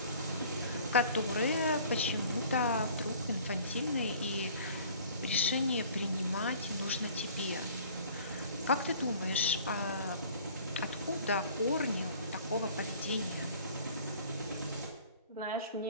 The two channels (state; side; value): inverted; both; correlation -0.50